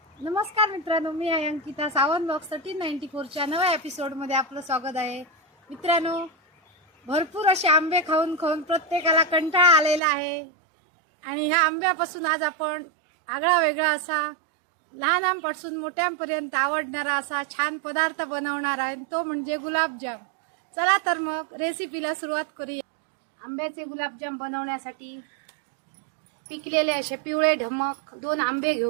नमस्कार मित्रांनो, मी आहे अंकिता. सावंत ब्लॉग्स 1394च्या नव्या एपिसोडमध्ये आपलं स्वागत आहे. मित्रांनो, भरपूर असे आंबे खाऊन खाऊन प्रत्येकाला कंटाळा आलेला आहे आणि ह्या आंब्यापासून आज आपण आगळा वेगळा असा लहानांपासून मोठ्यांपर्यंत आवडणारा असा छान पदार्थ बनवणार आहे, तो म्हणजे गुलाबजाम. चला तर मग रेसिपीला सुरुवात करूया. आंब्याचे गुलाबजाम बनवण्यासाठी पिकलेले असे पिवळे ढमक 2 आंबे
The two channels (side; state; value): left; drops out; at 10.0 s